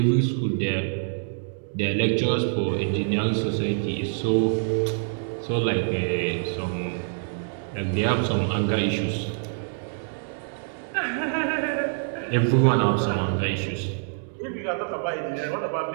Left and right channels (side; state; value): left; silent; digital silence